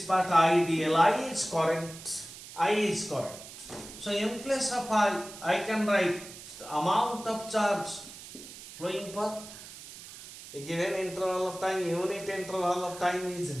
part IDL, I is current, So in place of I can write the amount of charge flowing per a given interval of time, unit interval of time is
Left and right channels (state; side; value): noise; right; hiss, 15 dB below the sound